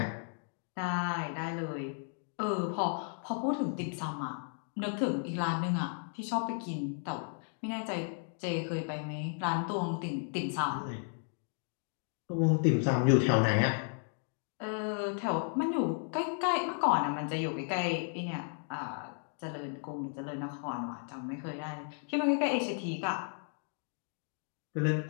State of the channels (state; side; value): silent; right; 55 dB below the other